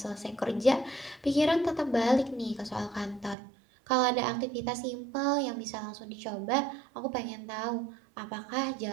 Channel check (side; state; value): left; drops out; at 3.4 s